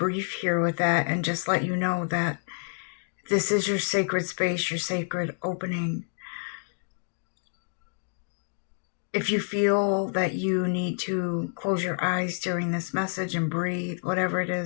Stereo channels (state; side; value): silent; right; digital silence